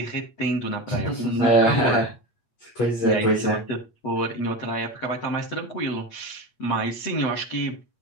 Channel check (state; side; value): late; right; 8.4 ms